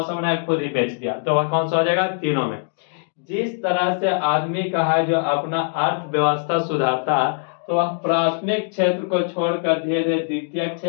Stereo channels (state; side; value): silent; right; digital silence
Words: बनाया, खुद ही बेच दिया, तो वह कौन सा हो जाएगा, तीनों में। जिस तरह से आदमी का है जो अपना अर्थव्यवस्था सुधारता है, तो वह प्राथमिक क्षेत्र को छोड़कर धीरे धीरे द्वितीय